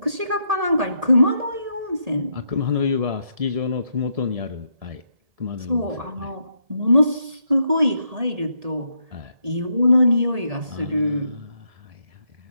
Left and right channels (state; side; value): late; left; 1.7 ms